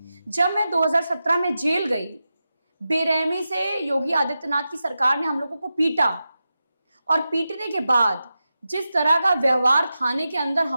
जब मैं 2017 में जेल गई, बेरहमी से योगी आदित्यनाथ की सरकार ने हम लोगों को पीटा, और पीटने के बाद जिस तरह का व्यवहार थाने के अंदर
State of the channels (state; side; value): inverted; both; correlation -0.91